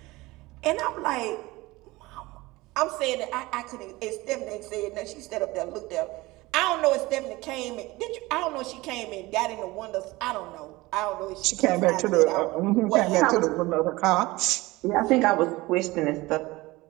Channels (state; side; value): quieter; left; 20.7 dB